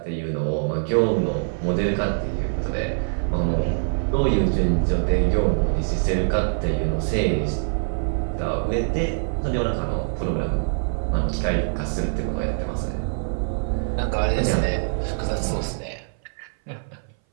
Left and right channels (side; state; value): left; silent; 58 dB below the other